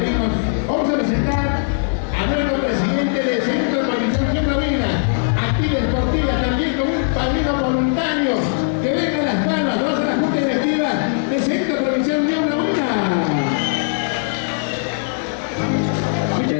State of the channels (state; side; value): silent; right; digital silence